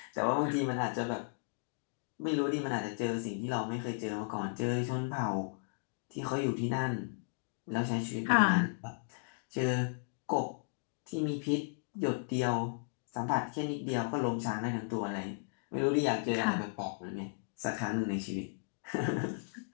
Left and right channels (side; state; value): right; silent; digital silence